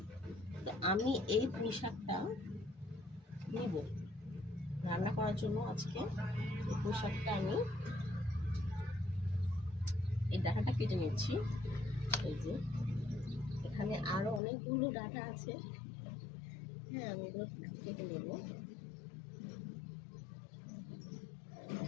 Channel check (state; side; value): drops out; right; at 14.4 s